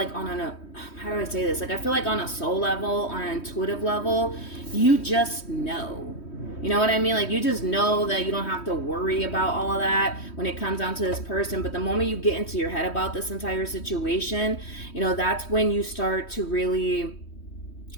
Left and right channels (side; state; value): right; late; 3.1 ms